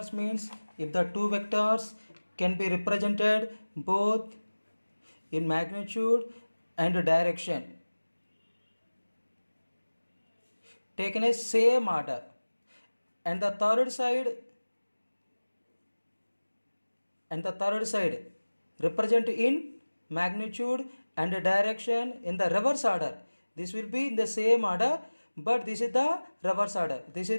means if the two vectors can be represented both in magnitude and direction taken a same order, and the third side represent in magnitude and direction in the reverse order. This will be in the same order, but this is the reverse order. This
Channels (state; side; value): inverted; both; correlation -1.00